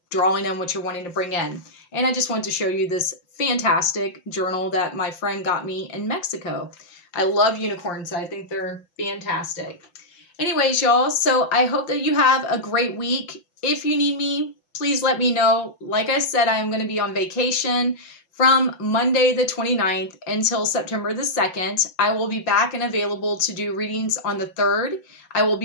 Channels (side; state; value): right; late; 5.8 ms